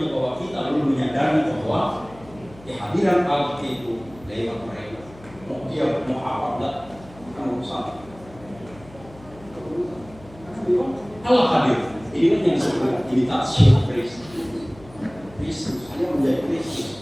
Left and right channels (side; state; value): left; noise; hum, 21 dB below the sound